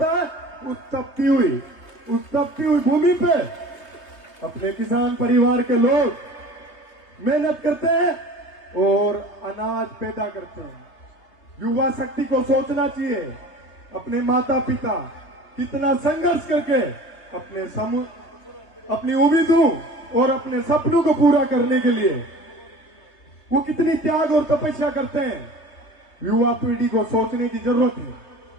है। उस तपती हुई भूमि पे अपने किसान परिवार के लोग मेहनत करते हैं और अनाज पैदा करते हैं। युवा शक्ति को सोचना चाहिए, अपने माता पिता कितना संघर्ष करके अपनी उम्मीदों और अपने सपनों को पूरा करने के लिए वो कितनी त्याग और तपस्या करते हैं। युवा पीढ़ी को सोचने की जरूरत है।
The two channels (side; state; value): right; late; 3.3 ms